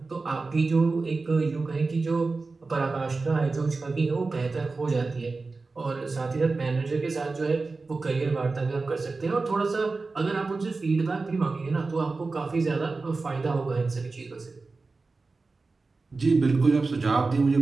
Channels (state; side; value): quieter; left; 3.9 dB